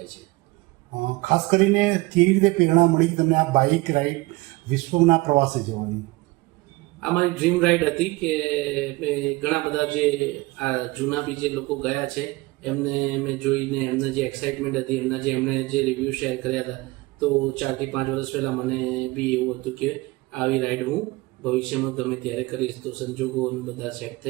છે. ખાસ કરીને કેવી રીતે પ્રેરણા મળી તમને આ બાઇક રાઇડ વિશ્વના પ્રવાસે જવાની? આ મારી ડ્રીમ રાઇડ હતી કે મેં ઘણા બધા જે આ જૂના બી જે લોકો ગયા છે એમને મેં જોઈને એમને જે એક્સાઇટમેન્ટ હતી, એમણે જે રિવ્યૂ શેર કર્યા હતા, તો 4 થી 5 વર્ષ પહેલાં મને બી એવું હતું કે આવી રાઇડ હું ભવિષ્યમાં ગમે ત્યારે કરીશ. તો સંજોગો બધા સેટ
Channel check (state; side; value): quieter; left; 21.9 dB